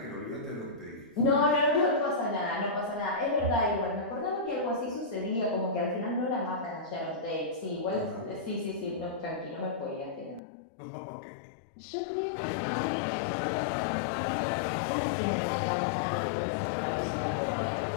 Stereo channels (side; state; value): right; drops out; at 10.4 s